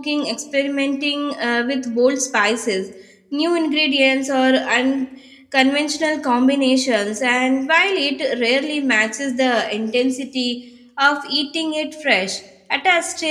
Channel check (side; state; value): both; identical; correlation 1.00